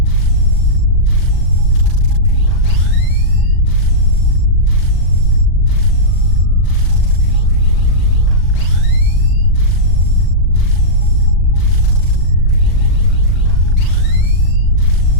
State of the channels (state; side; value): late; right; 39 ms